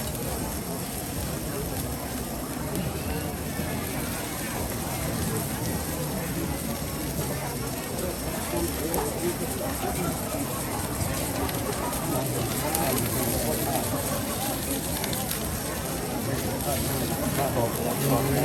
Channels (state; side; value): identical; both; correlation 1.00